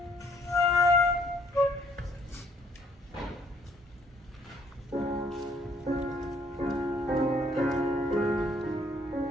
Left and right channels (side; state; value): both; normal; correlation 0.64